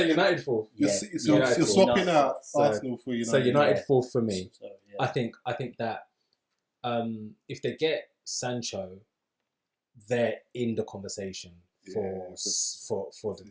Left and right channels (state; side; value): identical; both; correlation 1.00